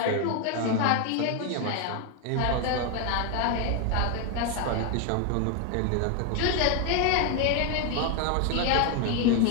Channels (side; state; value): both; different; correlation 0.01